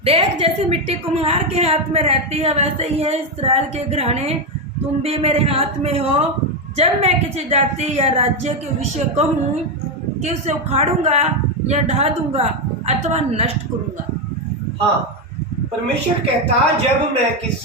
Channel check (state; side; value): normal; both; correlation 0.07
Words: देख जैसे मिट्टी कुम्हार के हाथ में रहती है, वैसे ही है इस्राएल के घराने, तुम भी मेरे हाथ में हो। जब मैं किसी जाति या राज्य के विषय कहूँ कि उसे उखाड़ूंगा या ढा दूंगा अथवा नष्ट करूंगा। हाँ, परमेश्वर कहता जब मैं